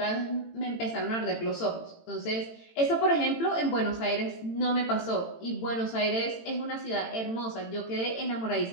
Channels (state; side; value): late; right; 18 ms